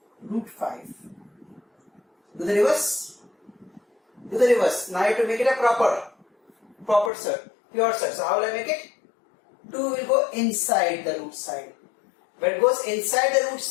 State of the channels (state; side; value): drops out; right; at 7.1 s